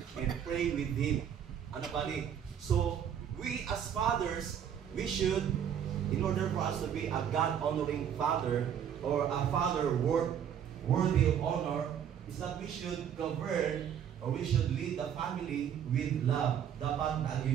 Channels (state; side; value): quieter; left; 8.9 dB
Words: and pray with him. Bali. So, we as fathers, we should, in order for us to be a God-honoring father, or a father worthy of honor, is that we should govern, or we should lead the family with love. Dapat